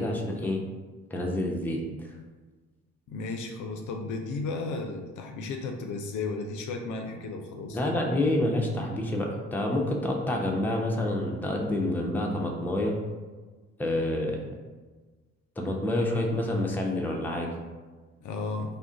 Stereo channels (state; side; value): normal; both; correlation 0.63